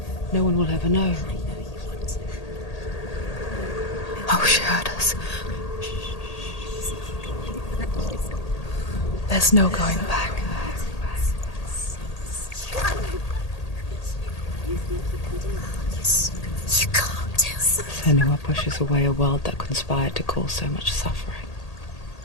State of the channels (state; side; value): late; right; 1.8 ms